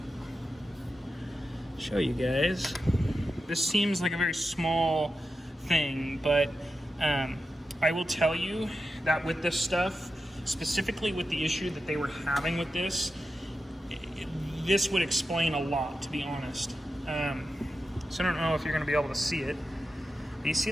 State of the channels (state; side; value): normal; both; correlation 0.90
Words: show you guys. This seems like a very small thing, but I will tell you that with this stuff, specifically with the issue that they were having with this, this would explain a lot, to be honest. So I don't know if you're going to be able to see it. Do you see